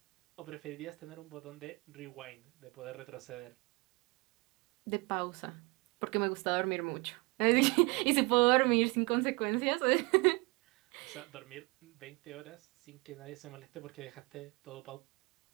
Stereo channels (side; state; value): left; quieter; 27.3 dB